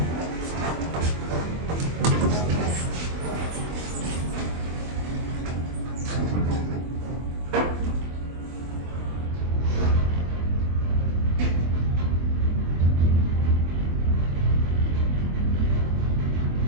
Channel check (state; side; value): late; left; 24 ms